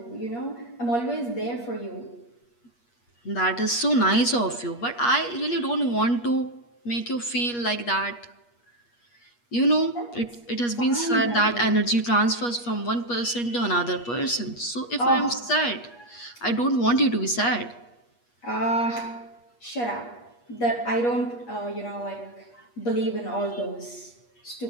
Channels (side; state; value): right; late; 8.4 ms